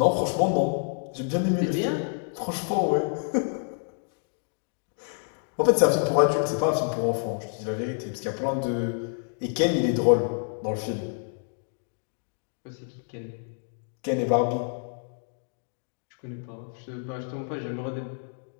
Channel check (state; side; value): silent; right; 59 dB below the other